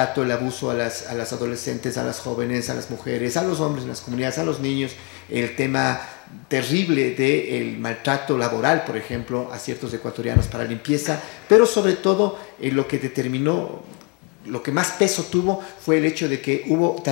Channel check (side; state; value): right; quieter; 31.9 dB